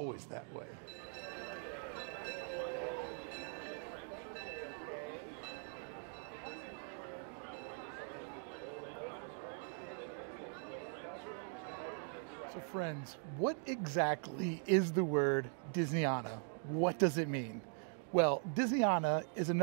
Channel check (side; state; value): left; silent; 50 dB below the other